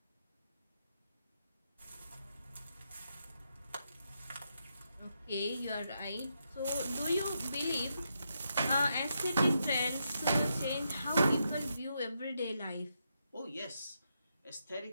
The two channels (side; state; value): both; inverted; correlation -0.82